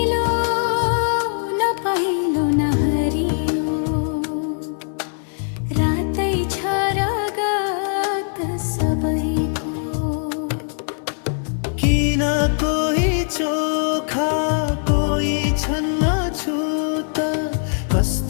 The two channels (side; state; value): right; silent; 65 dB below the other